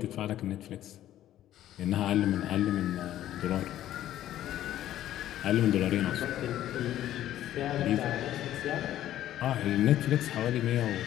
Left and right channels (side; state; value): right; quieter; 12.7 dB